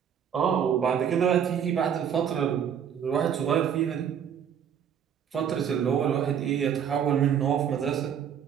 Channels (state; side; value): quieter; left; 8.4 dB